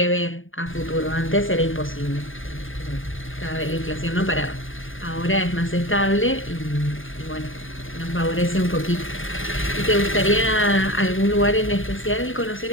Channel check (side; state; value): right; late; 0.58 ms